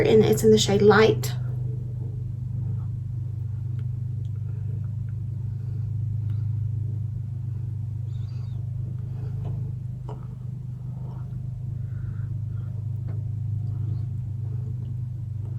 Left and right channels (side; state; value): both; identical; correlation 1.00